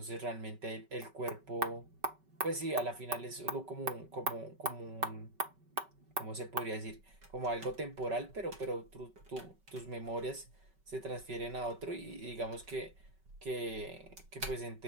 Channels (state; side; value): late; left; 5.3 ms